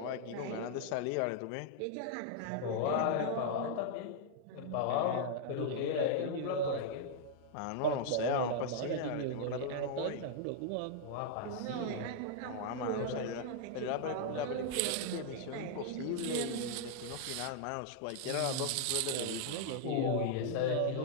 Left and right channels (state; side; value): different; both; correlation -0.01